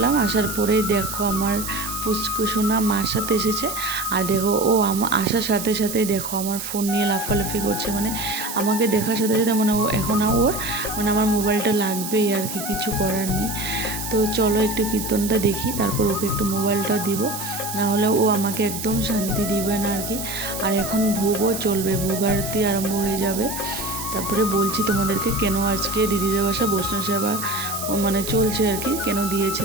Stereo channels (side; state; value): right; noise; hiss, 7 dB below the sound